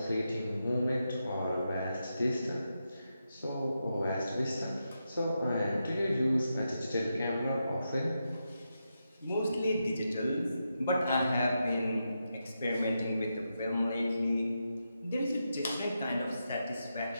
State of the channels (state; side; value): inverted; both; correlation -0.86